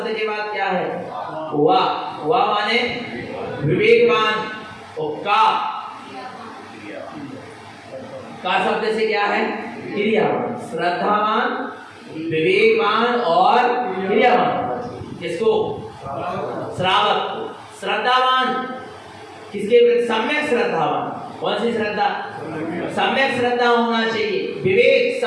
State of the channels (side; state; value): both; identical; correlation 1.00